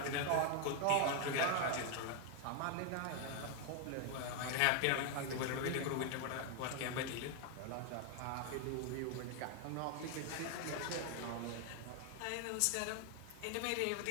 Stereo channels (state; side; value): different; both; correlation 0.01